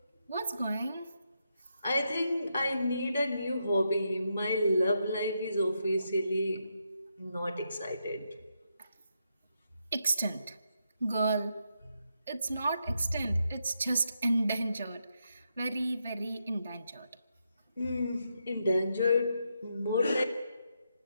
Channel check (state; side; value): inverted; both; correlation -0.82